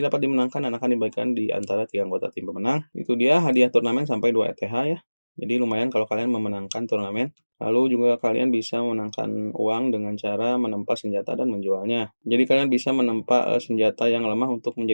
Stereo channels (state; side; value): inverted; both; correlation -1.00